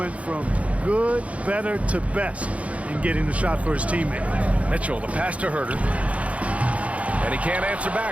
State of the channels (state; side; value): late; left; 0.065 ms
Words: from good, better to best in getting the shot for his teammate. Mitchell, the pass to Herter. And he can't answer